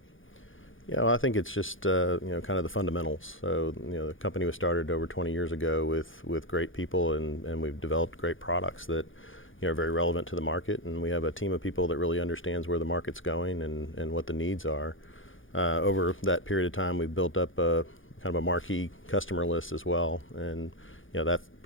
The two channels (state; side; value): late; right; 0.58 ms